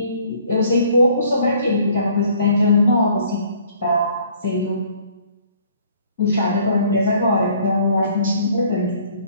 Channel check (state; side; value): inverted; both; correlation -0.58